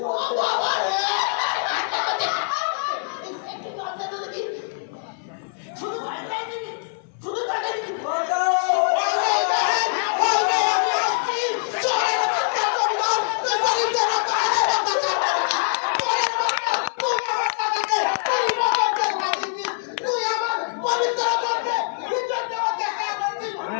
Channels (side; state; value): right; silent; 57 dB below the other